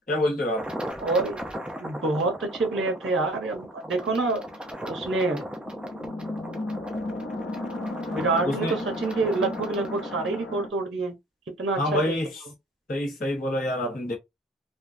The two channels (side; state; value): both; normal; correlation 0.49